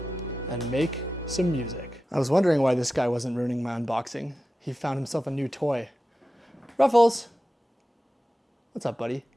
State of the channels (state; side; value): normal; both; correlation 0.93